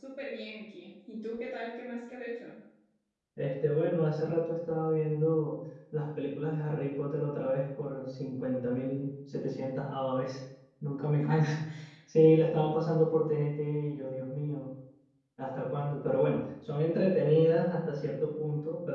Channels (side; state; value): both; identical; correlation 1.00